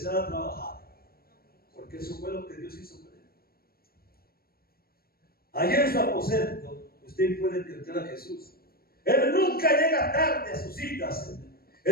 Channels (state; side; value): late; right; 0.44 ms